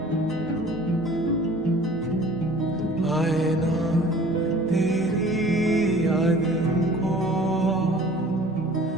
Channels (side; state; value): both; normal; correlation 0.48